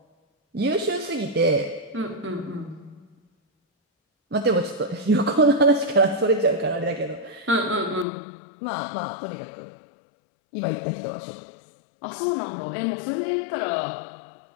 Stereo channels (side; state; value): right; drops out; at 8.1 s